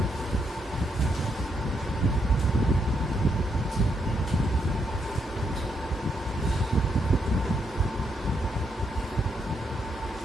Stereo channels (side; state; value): both; normal; correlation 0.78